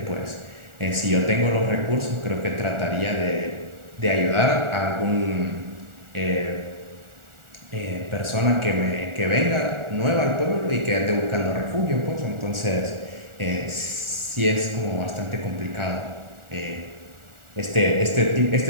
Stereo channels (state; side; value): late; left; 1.4 ms